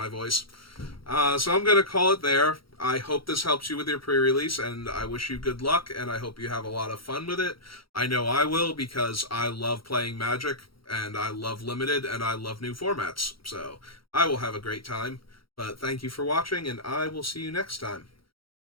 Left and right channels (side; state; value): right; late; 0.74 ms